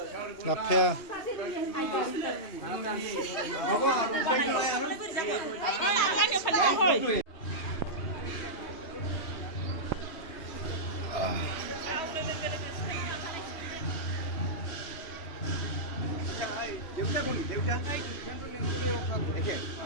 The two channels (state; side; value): late; right; 3.3 ms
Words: Lapya. দেউতা কোন দেউতা